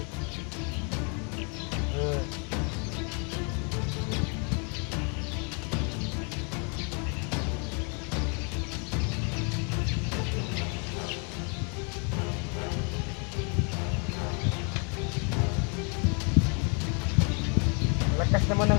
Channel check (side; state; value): right; quieter; 36.3 dB